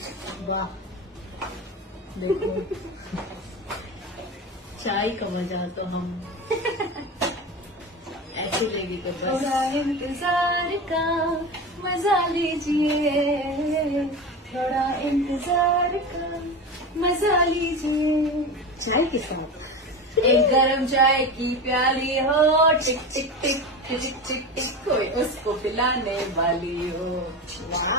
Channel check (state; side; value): normal; both; correlation 0.25